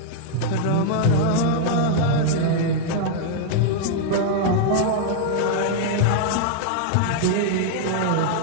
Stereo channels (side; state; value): both; different; correlation -0.01